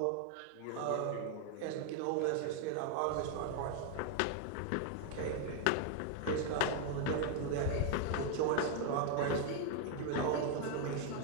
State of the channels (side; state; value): both; different; correlation 0.00